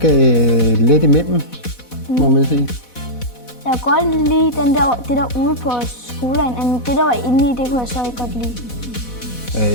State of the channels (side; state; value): right; late; 4.1 ms